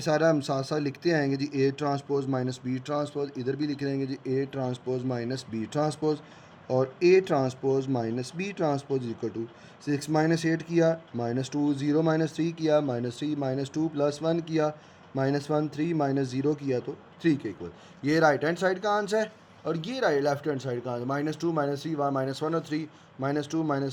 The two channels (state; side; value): identical; both; correlation 1.00